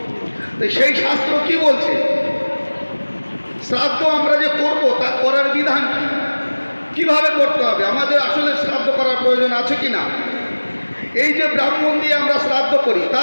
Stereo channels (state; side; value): inverted; both; correlation -1.00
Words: তো সেই শাস্ত্র কি বলছে? শ্রাদ্ধ আমরা যে করব তা করার বিধান কি, কিভাবে করতে হবে, আমাদের আসলে শ্রাদ্ধ করার প্রয়োজন আছে কিনা, এই যে ব্রাহ্মণ দিয়ে আমরা শ্রাদ্ধ করি তা